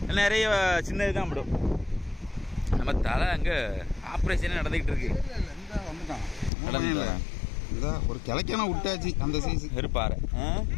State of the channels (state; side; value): drops out; right; at 6.5 s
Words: நிறைய சின்னது தான் படும். நம்ம தலை அங்கே ஆப்ரேஷனே நடந்துக்கிட்டு இருக்கு. ஒரு கிளைக்கான விட்டாச்சு. அந்த சைஸ் இருப்பாரு